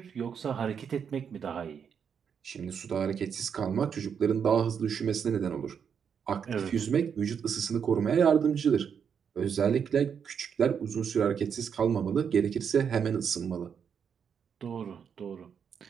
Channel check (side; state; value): left; quieter; 7.2 dB